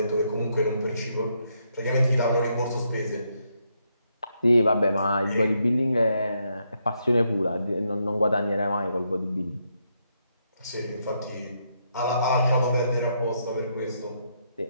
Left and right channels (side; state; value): both; inverted; correlation -0.77